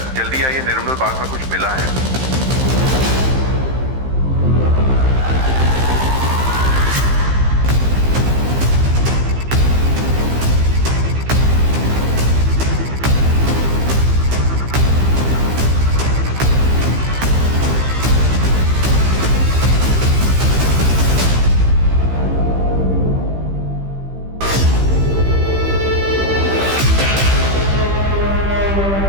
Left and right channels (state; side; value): late; left; 15 ms